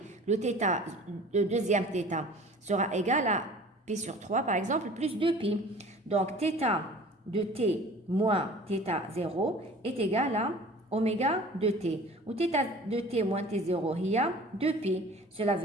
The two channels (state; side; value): normal; both; correlation 0.45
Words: le θ, le deuxième θ, sera égal à π sur 3, par exemple, plus 2π. Donc, θ de t moins θ0 est égal à oméga de t. Ou θ de t moins t0, il y a 2π. Cela